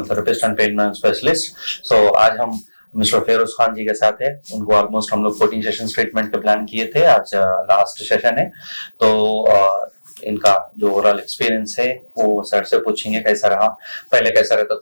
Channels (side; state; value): both; inverted; correlation -1.00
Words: therapist and pain management specialist. So आज हम मिस्टर फेरोज खान जी के साथ है। उनको ऑलमोस्ट हम लोग 14 सेशंस ट्रीटमेंट के प्लान किए थे। आज लास्ट सेशन है, तो इनका जो ओवरऑल एक्सपीरियंस है वो सर से पूछेंगे कैसा रहा, पहले कैसा रहता